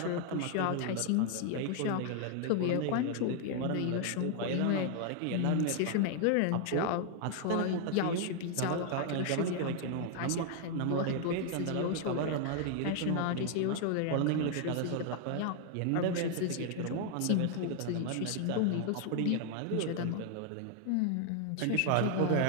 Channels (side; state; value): both; different; correlation 0.00